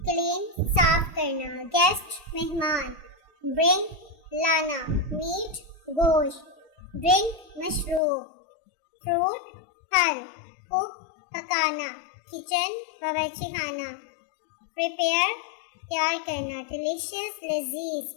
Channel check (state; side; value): drops out; right; at 8.0 s